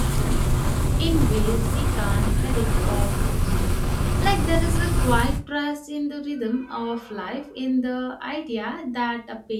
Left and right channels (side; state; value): both; identical; correlation 1.00